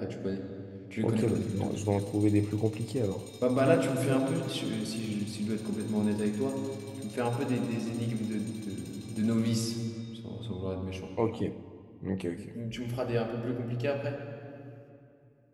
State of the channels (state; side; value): identical; both; correlation 1.00